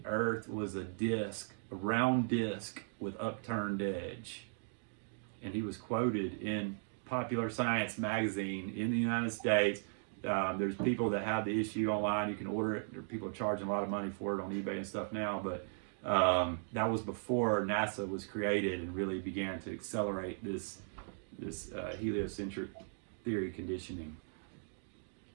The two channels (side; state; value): left; silent; digital silence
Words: Earth was a round disc with upturned edge. And he was quoted in Popular Science magazine in the United States. There's people that have the issue online. You can order it. There are people charging a lot of money for it on eBay and stuff now. But that was before NASA was created and really began to accelerate this heliocentric theory conditioning.